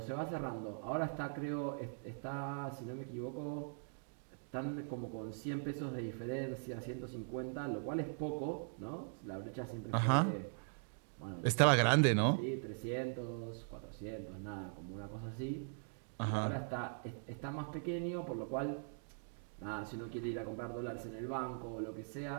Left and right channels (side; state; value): left; silent; digital silence